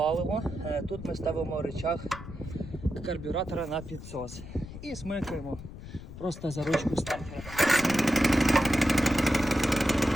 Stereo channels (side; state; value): left; noise; rumble, 13 dB below the sound